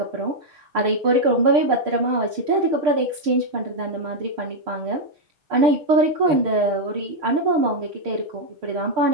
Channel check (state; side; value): late; left; 6.6 ms